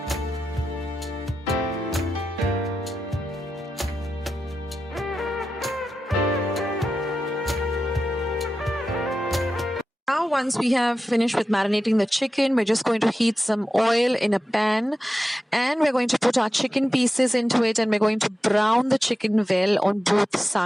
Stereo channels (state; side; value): normal; both; correlation 0.91